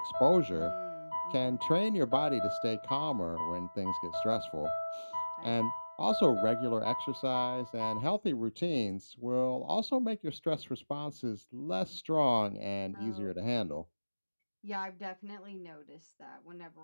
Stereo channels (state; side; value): inverted; both; correlation -1.00